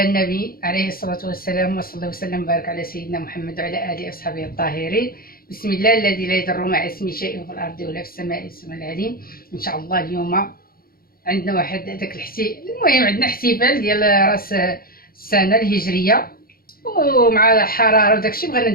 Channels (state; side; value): late; right; 0.43 ms